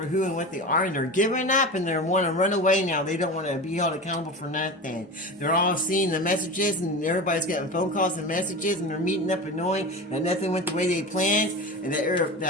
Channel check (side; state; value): both; normal; correlation 0.29